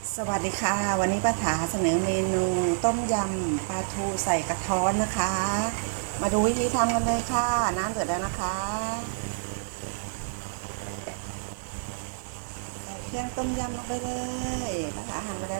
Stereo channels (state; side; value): silent; left; digital silence